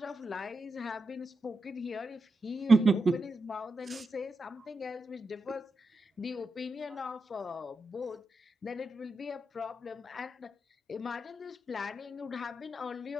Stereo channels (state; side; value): normal; both; correlation 0.87